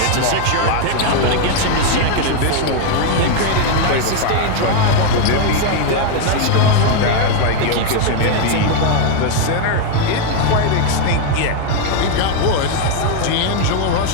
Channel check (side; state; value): both; different; correlation 0.01